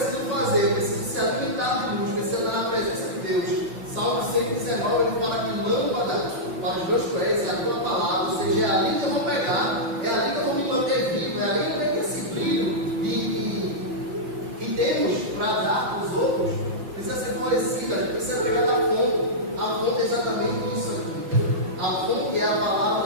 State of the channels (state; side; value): late; left; 5.9 ms